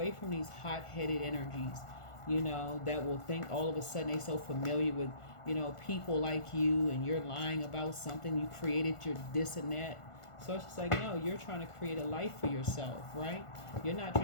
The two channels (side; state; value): right; late; 1.5 ms